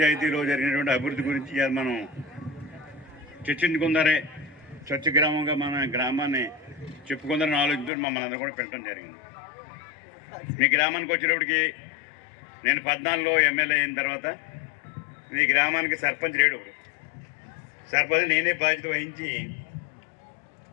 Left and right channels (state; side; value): drops out; right; at 7.9 s